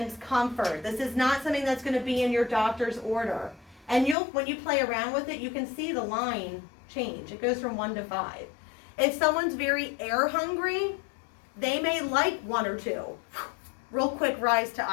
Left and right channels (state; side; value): drops out; right; at 4.2 s